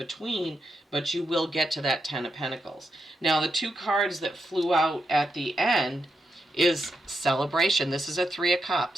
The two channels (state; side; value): normal; both; correlation 0.84